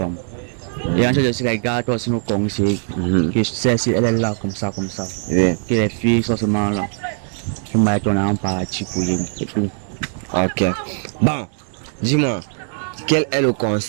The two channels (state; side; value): silent; left; 56 dB below the other